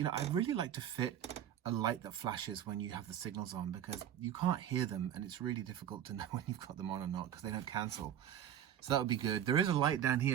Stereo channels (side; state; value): left; quieter; 10.2 dB